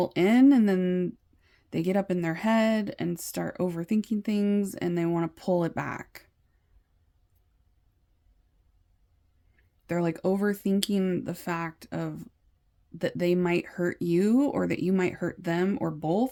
in, and then they get up in their head and start overthinking things, and they want to pull it back. They're like overthinking the fact of that they might hurt you, or that you might hurt them, or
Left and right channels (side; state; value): both; identical; correlation 1.00